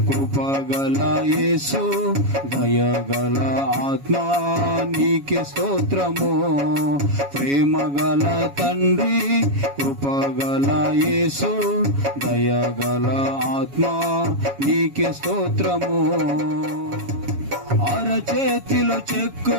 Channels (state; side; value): late; left; 7.2 ms